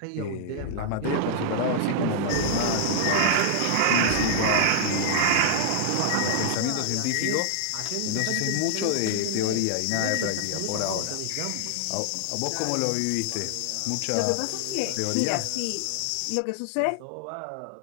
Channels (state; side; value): different; both; correlation -0.01